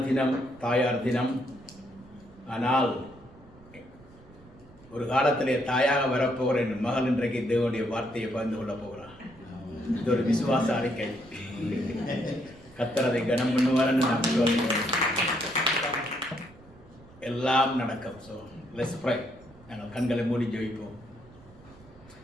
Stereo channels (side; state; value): right; noise; rumble, 23 dB below the sound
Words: தினம், தாயார் தினம். ஆனால் ஒரு காலத்திலே தாயாக வரப்போகிற என் மகள் இன்றைக்கு தேவனுடைய வார்த்தையை பகிர்ந்து கொள்ள போகிறார். இது ஒரு விசுவாச அறிக்கை. கர்த்தர் அதை கனம் பண்ணுவார்னு நான் சொல்கிறேன். எல்லாம் நடக்கும். So let's pray. நாங்கள் கண்களை மூடி ஜெபிப்போம்.